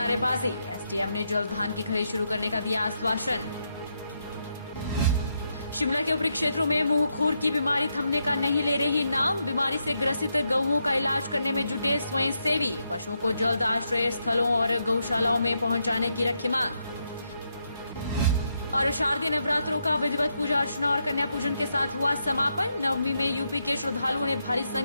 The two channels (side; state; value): both; inverted; correlation -0.81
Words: एसडीएम ने जल्द धान की खरीद शुरू करने का दिया आश्वासन। शिमला के ऊपरी क्षेत्रों में मुंहखोर की बीमारी थमने का नहीं ले रही नाम। बीमारी से ग्रसित गौओं का इलाज करने में जुटे स्वयंसेवी। पशुओं को जल्द आश्रय स्थलों और गौशालाओं में पहुंचाने की रखी मांग। और शारदीय नवरात्रों का विधिवत पूजा अर्चना और कन्या पूजन के साथ हुआ समापन। नवमी में यूपी के श्रद्धालुओं ने भारी